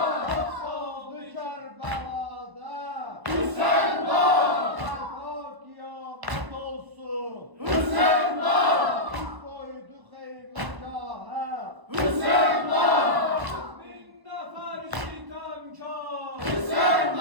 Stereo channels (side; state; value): left; late; 1.1 ms